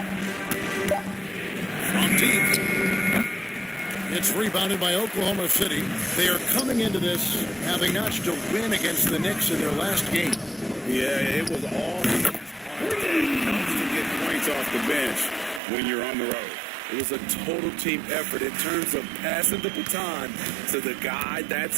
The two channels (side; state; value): left; drops out; at 15.6 s